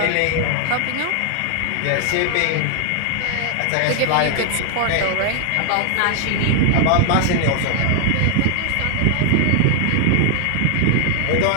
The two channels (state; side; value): different; both; correlation 0.00